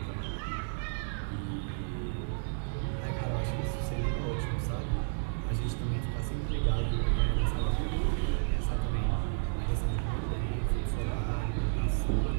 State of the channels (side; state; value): left; silent; digital silence